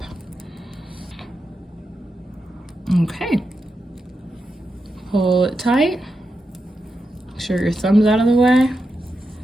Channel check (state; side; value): normal; both; correlation 0.88